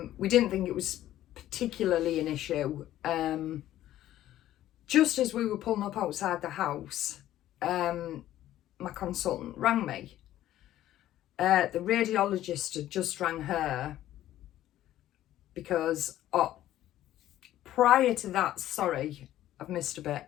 We didn't think it was particularly an issue. Just as we were pulling up outside the house, my consultant rang me. The radiologist had just rang her because prior to that, sorry, I've missed a bit.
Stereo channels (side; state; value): right; quieter; 13.3 dB